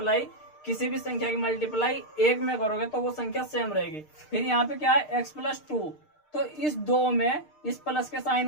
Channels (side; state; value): right; late; 6.6 ms